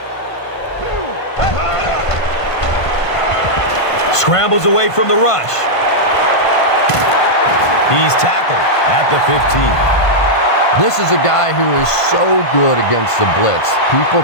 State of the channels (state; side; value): late; right; 1.5 ms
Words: Scrambles away from the rush. He's tackled at the 15. This is a guy who is so good against the blitz. People